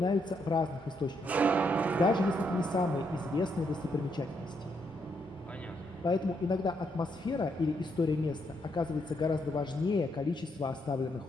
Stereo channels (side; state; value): both; normal; correlation 0.77